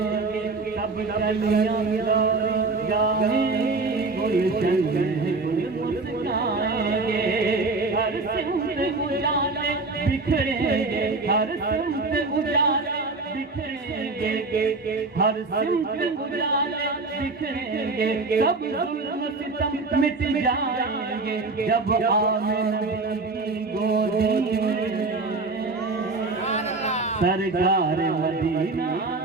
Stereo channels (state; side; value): quieter; left; 3.7 dB